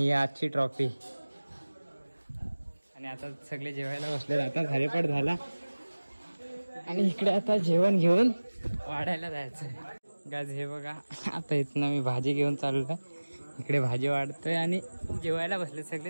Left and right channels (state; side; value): inverted; both; correlation -1.00